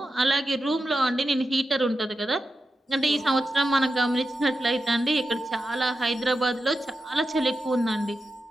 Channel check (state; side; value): normal; both; correlation 0.90